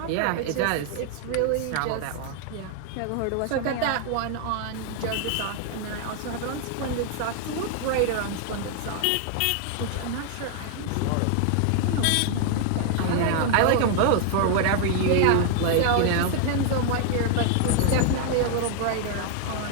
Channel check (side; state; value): both; different; correlation 0.00